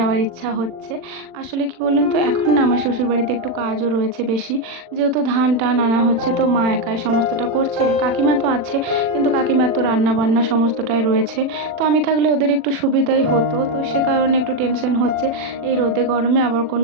ইচ্ছা হচ্ছে। আসলে কি বলুন তো, এখন না আমার শ্বশুরবাড়িতে একটু কাজও রয়েছে বেশি, যেহেতু ধান টান আনা হচ্ছে, তো মা একাই সমস্তটা করছে। কাকিমা তো আছে, কিন্তু কাকিমার তো রান্না বান্না সমস্তটাই রয়েছে। তো আমি থাকলে ওদের একটু সুবিধাই হতো, তো সে কারণে একটু টেনশন হচ্ছে। এই রোদে গরমে আবার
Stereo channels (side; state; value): left; late; 40 ms